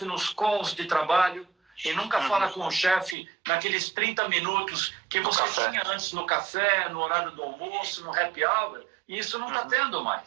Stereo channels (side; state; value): left; drops out; at 3.2 s